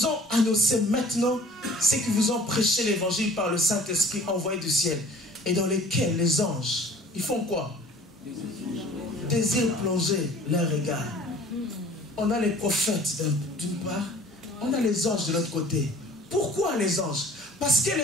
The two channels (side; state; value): both; normal; correlation 0.49